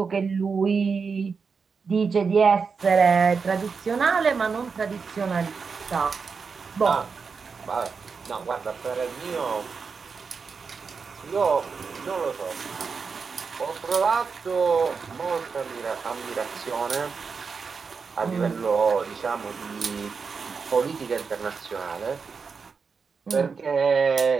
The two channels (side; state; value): left; quieter; 5.3 dB